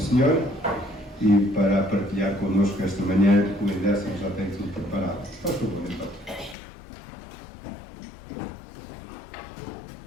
e para partilhar connosco esta manhã, o Edécimo já tem tudo preparado. Faz favor, então.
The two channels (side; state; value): right; drops out; at 6.6 s